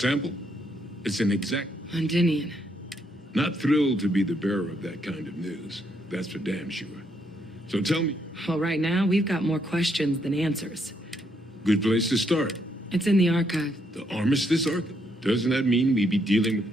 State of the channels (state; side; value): normal; both; correlation 0.75